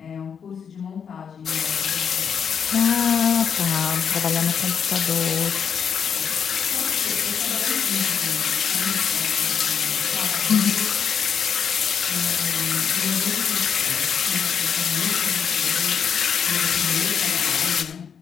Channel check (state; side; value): quieter; right; 7.1 dB